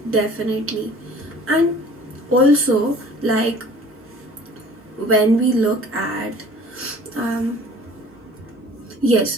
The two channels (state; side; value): normal; both; correlation 0.49